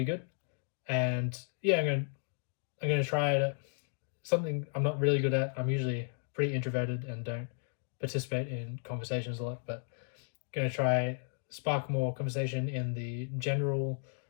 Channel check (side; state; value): right; silent; digital silence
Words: good. And I'm gonna try something I'm not really good at. I'm usually pretty introverted and don't participate in conversations a lot, but I'm gonna try spark more conversation in the general